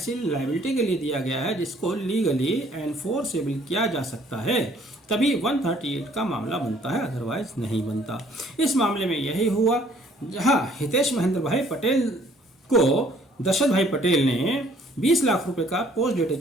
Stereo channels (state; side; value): normal; both; correlation 0.60